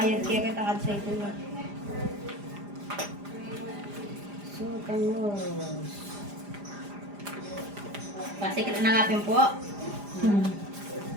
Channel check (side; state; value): left; late; 4.9 ms